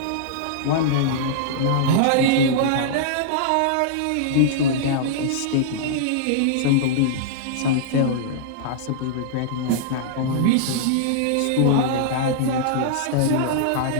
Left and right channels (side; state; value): both; different; correlation -0.02